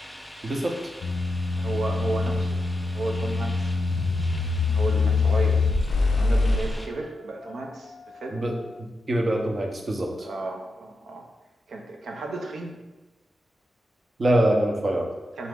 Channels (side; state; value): both; normal; correlation 0.87